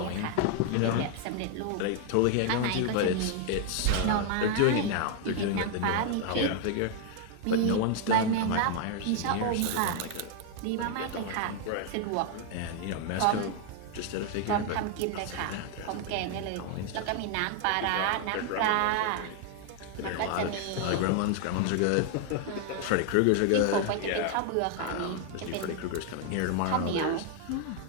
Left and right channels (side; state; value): both; different; correlation 0.00